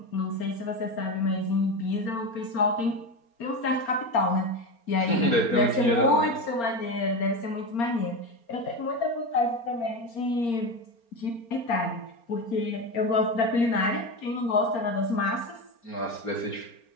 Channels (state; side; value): late; right; 4.3 ms